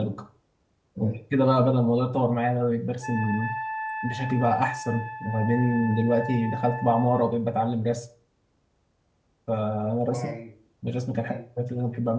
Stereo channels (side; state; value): both; identical; correlation 1.00